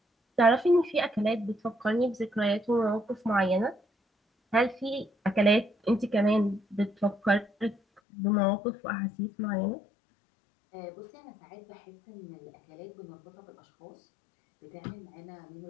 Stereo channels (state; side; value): drops out; right; at 8.0 s